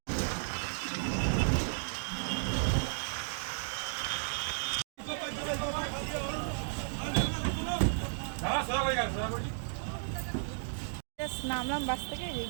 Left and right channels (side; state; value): left; silent; digital silence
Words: নামলাম বাস থেকে,